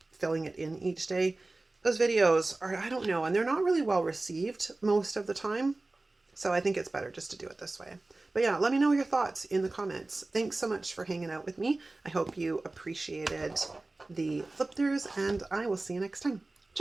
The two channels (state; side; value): quieter; left; 3.1 dB